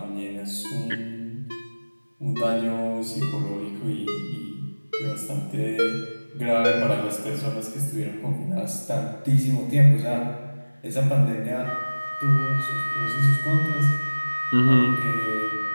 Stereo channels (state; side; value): inverted; both; correlation -1.00